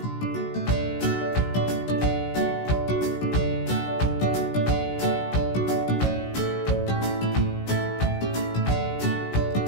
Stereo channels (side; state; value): right; late; 16 ms